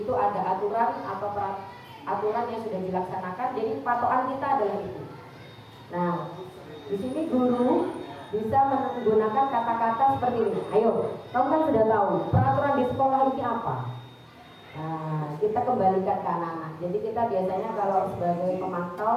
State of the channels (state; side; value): identical; both; correlation 1.00